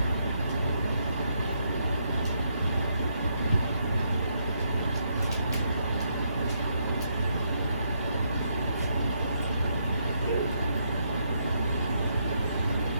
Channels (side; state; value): both; inverted; correlation -0.77